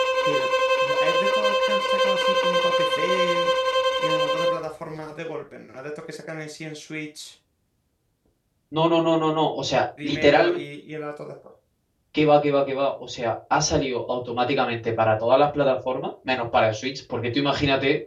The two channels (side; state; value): both; identical; correlation 1.00